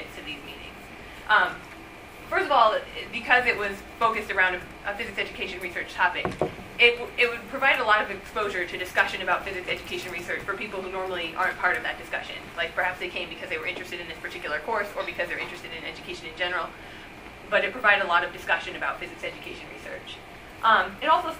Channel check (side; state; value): both; identical; correlation 1.00